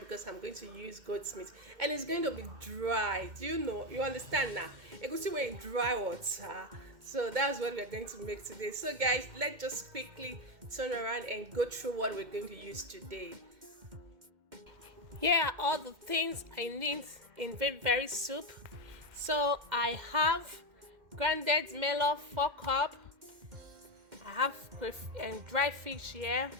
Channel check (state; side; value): late; left; 2.1 ms